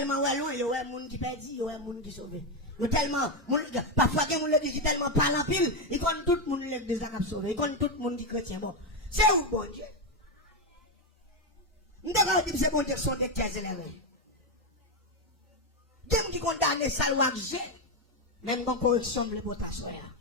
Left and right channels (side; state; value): both; normal; correlation 0.08